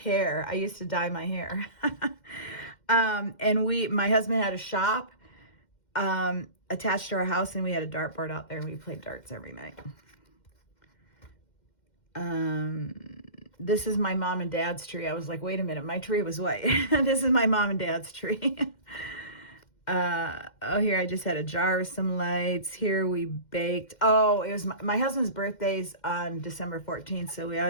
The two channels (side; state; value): right; late; 2.1 ms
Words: I used to dye my hair. And my husband had a shop attached to our house, and we had a dartboard out there, and we played darts every night. This is my mom and dad's tree. I was like, wait a minute, my tree was white. This is my mom and dad's tree. Here I just had a jar of some lights. Here we baked. Oh, it was my husband's birthday's on December 14th, so we